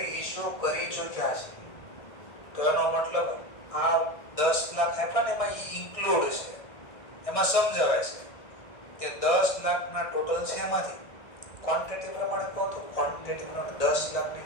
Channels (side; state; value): right; late; 1.6 ms